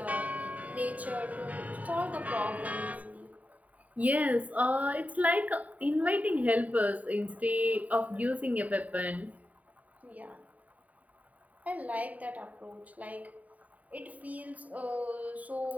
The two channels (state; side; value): late; left; 0.072 ms